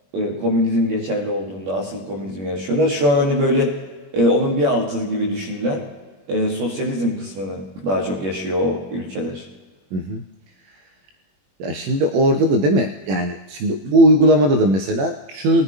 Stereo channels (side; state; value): left; late; 21 ms